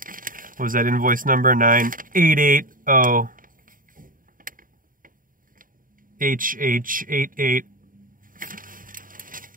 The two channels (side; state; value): left; late; 0.40 ms